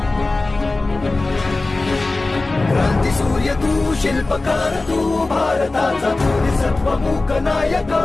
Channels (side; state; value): right; quieter; 3.3 dB